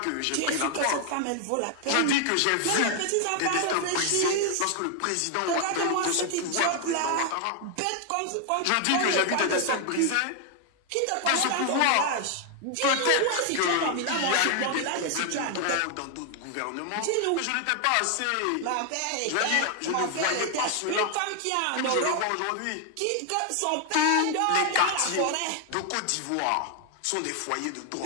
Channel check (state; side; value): different; both; correlation 0.00